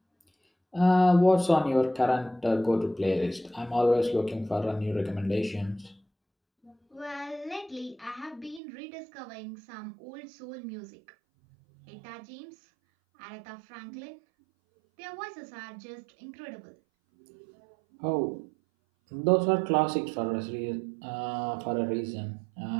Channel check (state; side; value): drops out; left; at 8.6 s